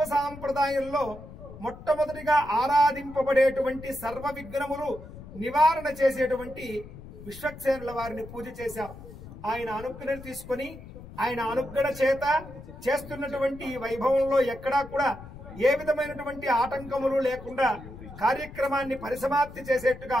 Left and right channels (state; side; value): noise; left; rumble, 15 dB below the sound